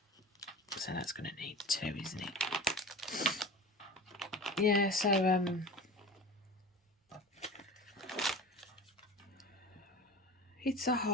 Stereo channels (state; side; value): normal; both; correlation 0.34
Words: So that's going to need 2, isn't it? Yeah, so it's a